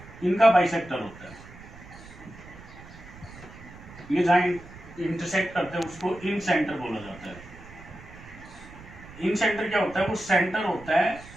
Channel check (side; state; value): right; noise; rumble, 18 dB below the sound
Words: इनका बाइसेक्टर होता है। ये जहां इंटरसेक्ट करते हैं उसको इन सेंटर बोला जाता है। इन सेंटर क्या होता है, वो सेंटर होता है